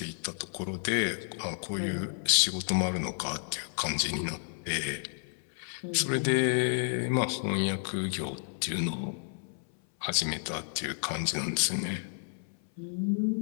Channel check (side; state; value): right; silent; 57 dB below the other